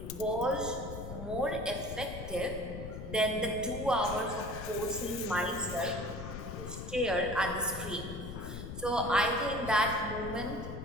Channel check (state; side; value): noise; left; rumble, 8 dB below the sound